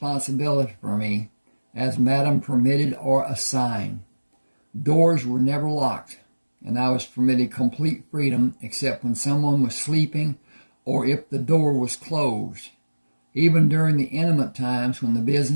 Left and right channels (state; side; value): inverted; both; correlation -1.00